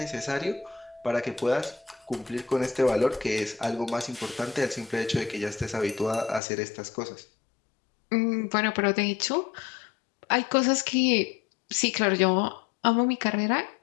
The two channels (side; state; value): right; drops out; at 6.4 s